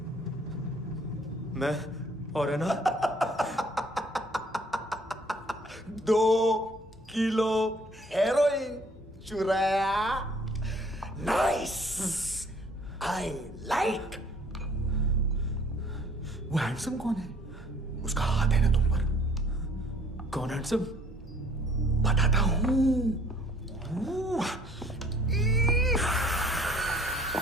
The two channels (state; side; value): normal; both; correlation 0.58